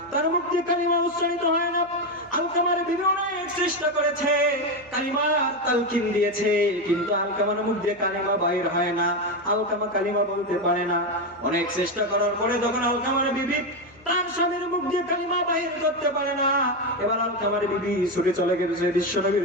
তার মুখ দিয়ে কালিমা উচ্চারিত হয় না। আলকামার বিবি অনেক চেষ্টা করেছে, কালিমার তালকিন দিয়েছে, কিন্তু আলকামার মুখ দিয়ে কালিমা বাইর হয় না, আলকামা কালিমা বলতে পারে না। অনেক চেষ্টা করার পরে যখন আলকামার বিবি তার স্বামীর মুখ দিয়ে কালিমা বাইর করতে পারে না, এবার আলকামার বিবি ছুটে চলে গেছে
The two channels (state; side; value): noise; left; hum, 27 dB below the sound